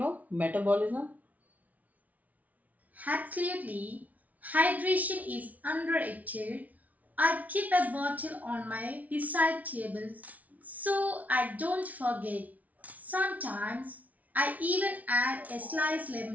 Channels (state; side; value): late; left; 0.072 ms